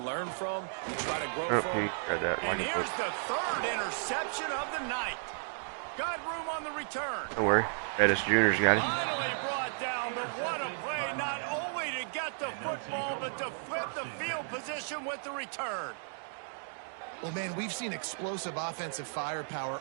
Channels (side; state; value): left; silent; digital silence